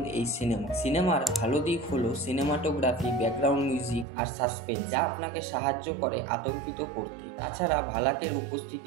এই সিনেমার ভালো দিক হলো সিনেমাটোগ্রাফি, ব্যাকগ্রাউন্ড মিউজিক আর সাসপেন্স, যা আপনাকে সাহায্য করে আতঙ্কিত করতে। তাছাড়া ভালাকের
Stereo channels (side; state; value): left; drops out; at 4.0 s